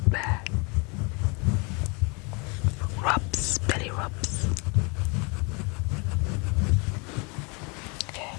bear. Rubs, belly rubs. Okay.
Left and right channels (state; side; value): quieter; right; 31.3 dB